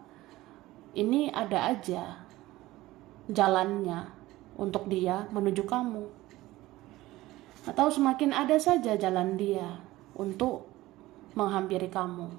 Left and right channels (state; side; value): quieter; left; 17.5 dB